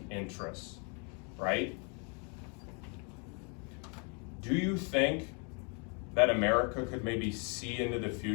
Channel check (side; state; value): right; quieter; 36.3 dB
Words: interests, right? Do you think that America could maybe see into the